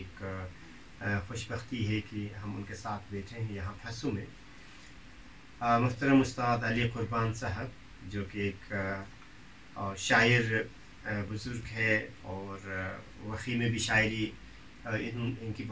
خوش بختی ہے کہ ہم ان کے ساتھ بیٹھے ہیں یہاں پھسو میں. محترم استاد علی قربان صاحب, جو کہ ایک شاعر بزرگ ہے, اور وقی میں بھی شاعری ان کی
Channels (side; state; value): both; identical; correlation 1.00